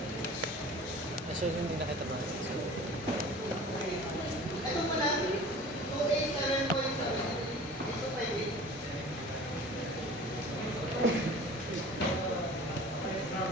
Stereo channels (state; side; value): normal; both; correlation 0.43